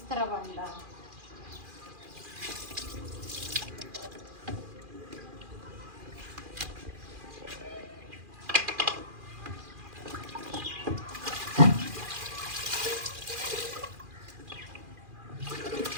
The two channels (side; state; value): left; late; 2.4 ms